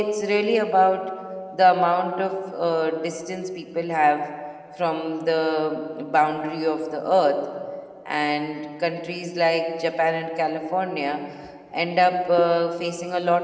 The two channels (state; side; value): identical; both; correlation 1.00